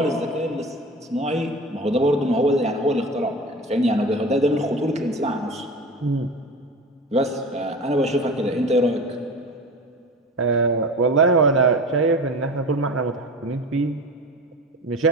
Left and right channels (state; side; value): normal; both; correlation 0.33